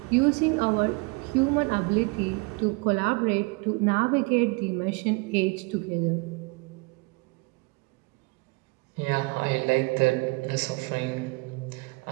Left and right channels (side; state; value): left; quieter; 28.5 dB